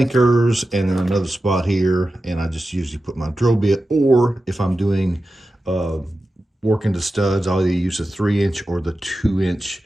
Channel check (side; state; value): both; normal; correlation 0.93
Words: and then another spot here, and I just usually put my drill bit, or if I'm doing work into studs, I'll either use a 3-inch or the 2-inch